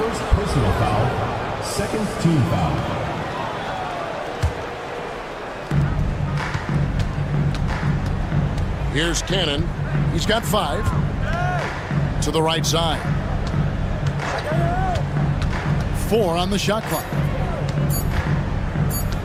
personal foul, second team foul. Here's Cannon. He's got 5. To the right side. 4 on the shot clock.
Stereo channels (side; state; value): both; identical; correlation 1.00